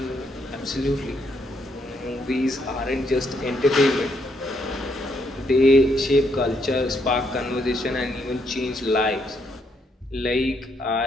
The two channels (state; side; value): normal; both; correlation 0.74